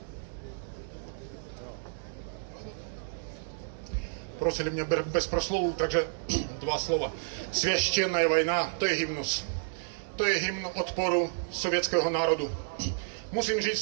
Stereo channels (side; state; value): left; silent; digital silence